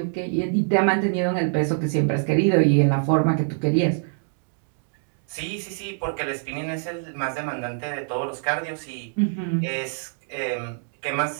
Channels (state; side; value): silent; left; 62 dB below the other